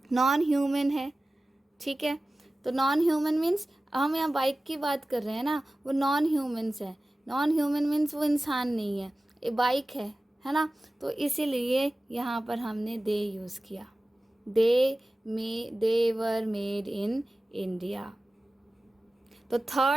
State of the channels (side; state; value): both; normal; correlation 0.96